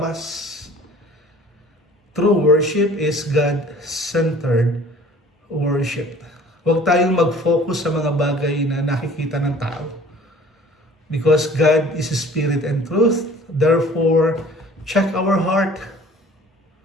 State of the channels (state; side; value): normal; both; correlation 0.50